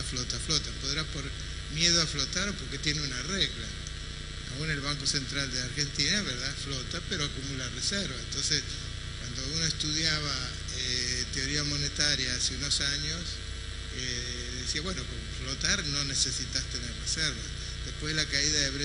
Podrá por miedo a flotar o porque tiene una regla. Aún el Banco Central de Argentina, ¿verdad?, flota, pero acumula reservas. Entonces, cuando uno estudiaba teoría monetaria hace unos años, decía, bueno, con flotar no necesitas tener reservas. Después de la caída de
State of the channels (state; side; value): identical; both; correlation 1.00